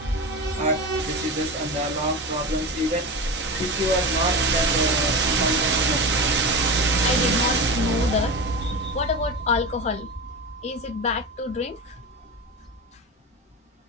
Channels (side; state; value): both; normal; correlation 0.25